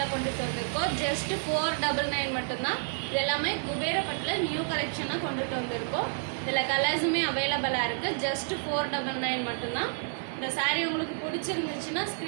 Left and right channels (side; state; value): left; silent; digital silence